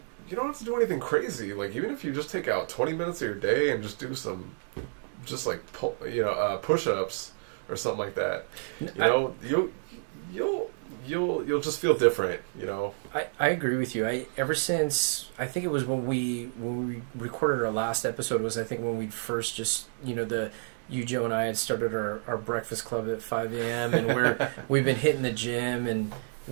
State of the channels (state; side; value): silent; left; 58 dB below the other